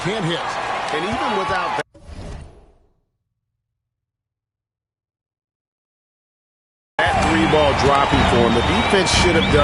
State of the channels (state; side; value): identical; both; correlation 1.00